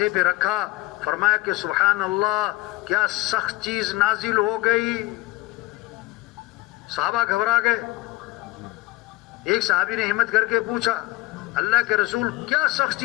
پہ رکھا، فرمایا کہ سبحان اللہ کیا سخت چیز نازل ہو گئی. صحابہ گھبرا گئے. ایک صحابی نے ہمت کر کے پوچھا اللہ کے رسول کیا سخت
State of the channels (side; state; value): right; quieter; 20.3 dB